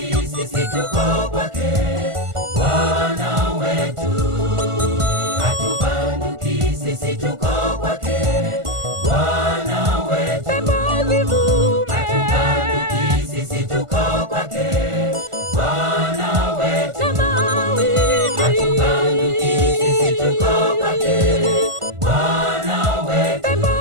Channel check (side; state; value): left; late; 1.5 ms